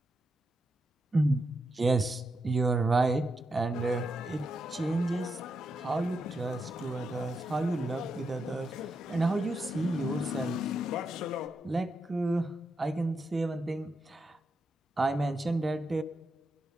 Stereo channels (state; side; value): normal; both; correlation 0.84